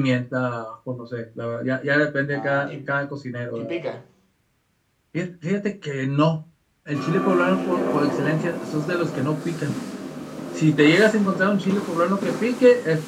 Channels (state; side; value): identical; both; correlation 1.00